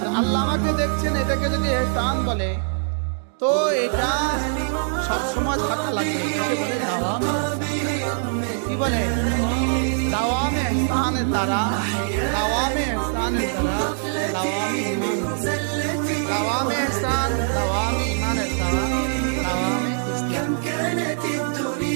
আল্লাহ আমাকে দেখছেন এটাকে যদি ইহসান বলে তো এটা সবসময় থাকা লাগবে। এটাকে বলে দাওয়াম। কি বলে? দাওয়ামে ইহসানের দ্বারা, দাওয়ামে ইহসানের দ্বারা, দাওয়ামে ঈমান, দাওয়ামে ইহসান, দাওয়ামে ঈমানের দ্বারা, দাওয়ামে ইসলাম,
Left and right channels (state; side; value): silent; left; 64 dB below the other